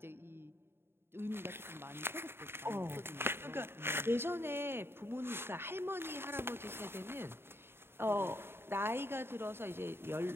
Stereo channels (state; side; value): late; left; 0.11 ms